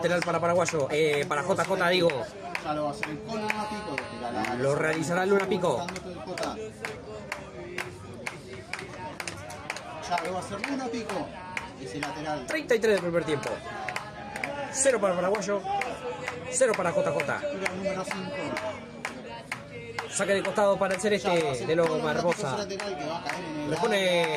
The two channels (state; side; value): identical; both; correlation 1.00